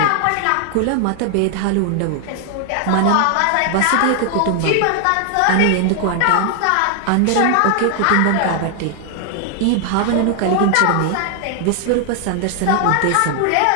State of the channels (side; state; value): both; different; correlation 0.00